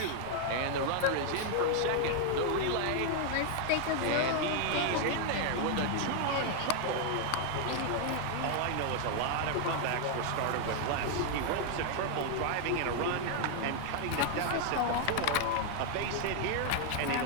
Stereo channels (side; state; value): both; different; correlation 0.00